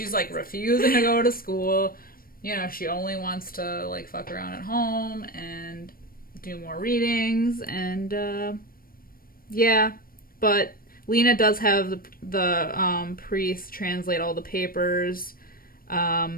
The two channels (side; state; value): right; late; 0.42 ms